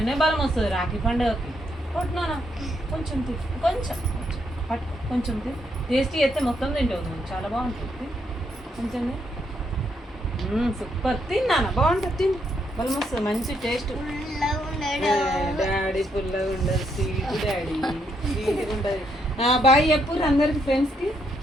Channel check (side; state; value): both; normal; correlation 0.76